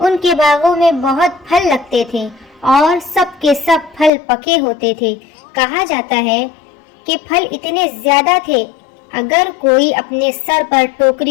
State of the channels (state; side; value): drops out; right; at 4.1 s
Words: کے باغوں میں بہت پھل لگتے تھے اور سب کے سب پھل پکے ہوتے تھے۔ کہا جاتا ہے کہ پھل اتنے زیادہ تھے، اگر کوئی اپنے سر پر